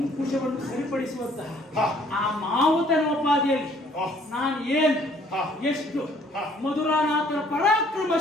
ಸರಿಪಡಿಸುವಂತಹ ಆ ಮಾವುತನೋಪಾದಿಯಲ್ಲಿ ನಾನು ಏನು ಎಷ್ಟು ಮಧುರಾನಾಥನ ಪರಾಕ್ರಮ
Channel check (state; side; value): normal; both; correlation 0.60